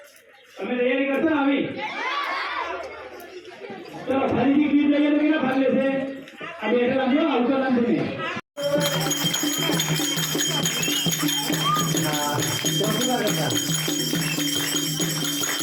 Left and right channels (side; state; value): both; identical; correlation 1.00